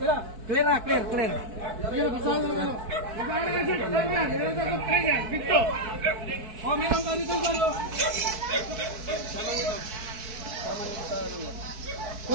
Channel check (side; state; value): left; late; 4.6 ms